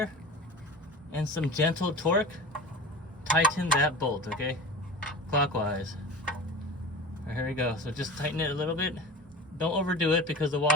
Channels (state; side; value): normal; both; correlation 0.34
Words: and some gentle torque, tighten that bolt, okay? Clockwise. All right, here we go. So just tighten it a little bit. Don't overdo it because the